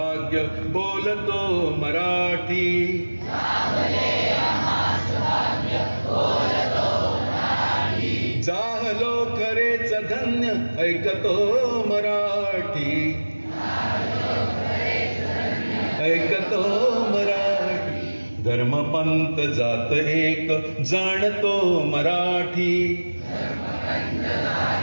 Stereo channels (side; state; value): both; inverted; correlation -1.00